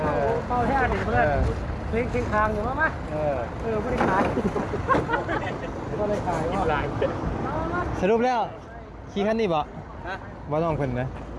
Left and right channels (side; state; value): both; identical; correlation 1.00